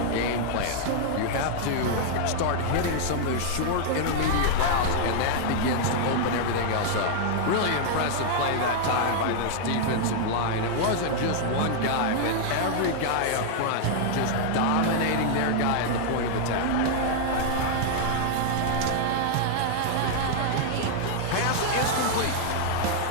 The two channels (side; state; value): both; different; correlation -0.01